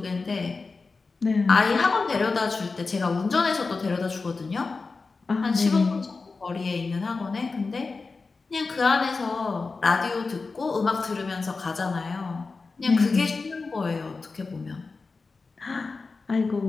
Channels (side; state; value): right; quieter; 4.1 dB